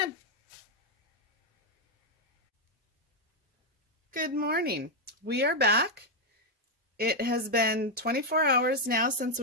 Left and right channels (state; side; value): normal; both; correlation 0.02